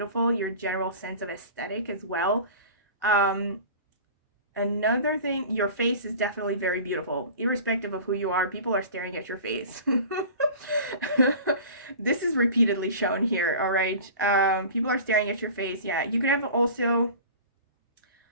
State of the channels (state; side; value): inverted; both; correlation -0.39